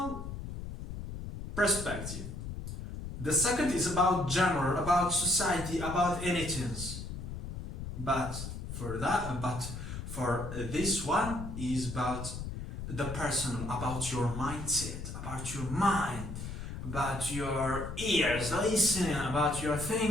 perspective. The second is about general, about society, about anything. But for this one is about the personal, about your mindset, about your mind, about your ears listening, about your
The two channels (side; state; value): left; noise; rumble, 7 dB below the sound